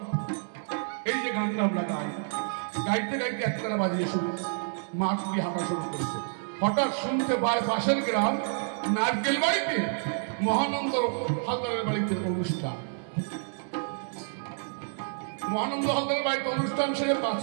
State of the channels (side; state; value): left; silent; 59 dB below the other